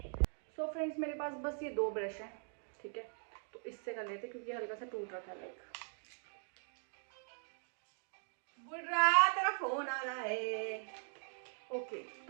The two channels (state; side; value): silent; left; 51 dB below the other